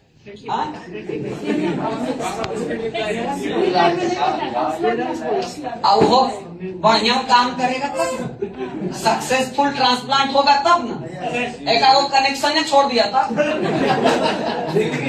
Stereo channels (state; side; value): identical; both; correlation 1.00